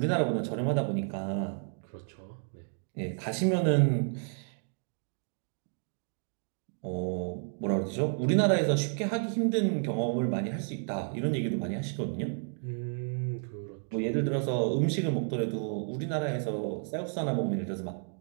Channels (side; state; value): left; silent; 57 dB below the other